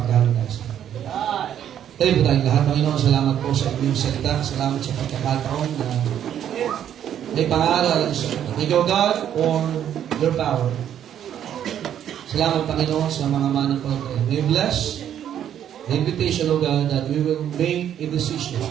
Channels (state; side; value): quieter; left; 10.0 dB